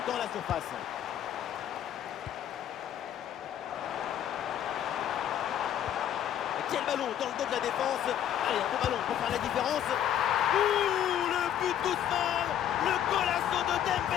dans la surface. Quel ballon dans le dos de la défense. Allez, un bon ballon pour faire la différence. Ouh, le but d'Ousmane. Le golasso de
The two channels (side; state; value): right; quieter; 10.4 dB